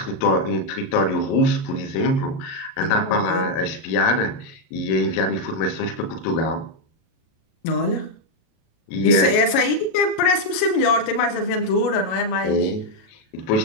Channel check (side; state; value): right; late; 37 ms